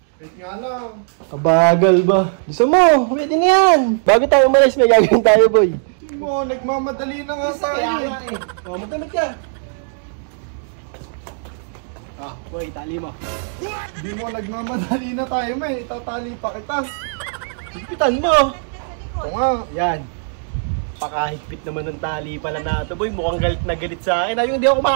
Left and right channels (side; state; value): left; silent; digital silence